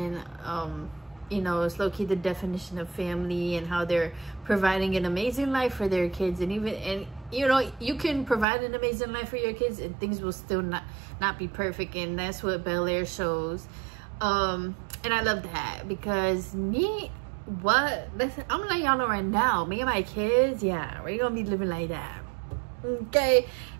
You know, it's low-key the definition of family, and how they're providing an amazing life for their kids. And even, and you know, you can provide an amazing life for your kids and things will still not be perfect. And that's what Bel-Air shows. And I love that, because listen, I'm gonna let y'all know right now, me and my kids, yeah, we're gonna be living like that. Okay,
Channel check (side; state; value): left; drops out; at 8.5 s